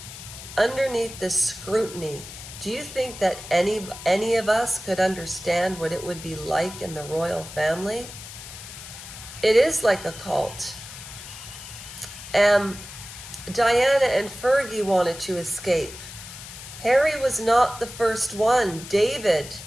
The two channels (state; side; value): noise; left; hiss, 13 dB below the sound